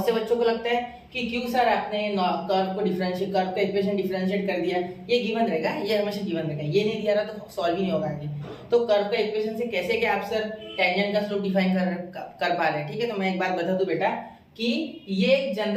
से बच्चों को लगता है कि क्यों सर आपने कर्व का इक्वेशन डिफरेंशिएट कर दिया, ये गिवन रहेगा, ये हमेशा गिवन रहेगा, ये नहीं दिया रहा तो सॉल्व ही नहीं होगा आगे। तो कर्व का इक्वेशन से कैसे क्या आप सर टेंजेंट का स्लोप डिफाइन कर पा रहे हैं, ठीक है। तो मैं एक बात बता दूं बेटा कि ये एक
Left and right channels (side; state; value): both; identical; correlation 1.00